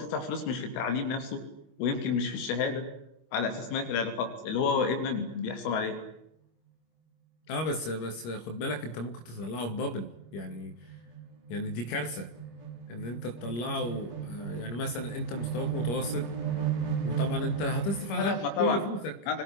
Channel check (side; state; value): right; late; 25 ms